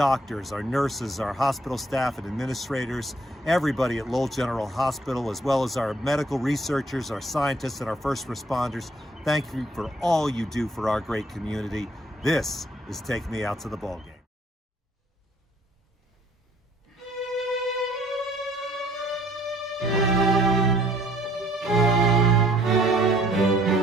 our nurses, our hospital staff and administrators, everybody at Lowell General Hospital, as well as our medical researchers, our scientists, and our first responders. Thank you for all you do for our great community. This is Take Me Out to the Ball Game.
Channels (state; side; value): normal; both; correlation 0.62